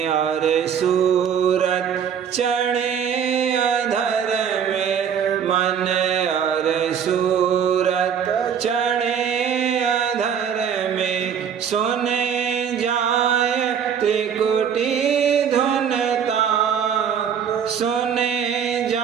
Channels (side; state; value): left; quieter; 7.8 dB